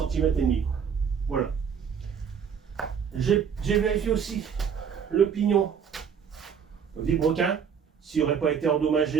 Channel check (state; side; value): quieter; left; 7.1 dB